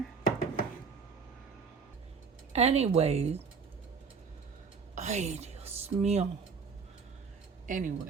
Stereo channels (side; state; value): left; quieter; 5.4 dB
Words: Anyways, ay, Dios mío.